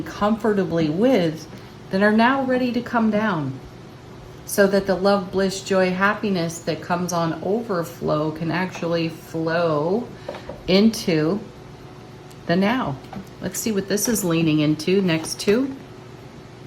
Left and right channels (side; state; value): both; identical; correlation 1.00